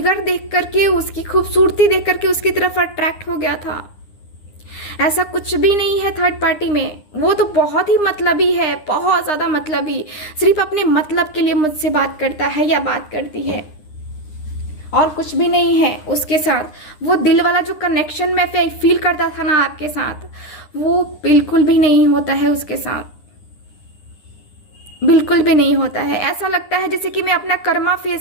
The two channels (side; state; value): right; late; 9.8 ms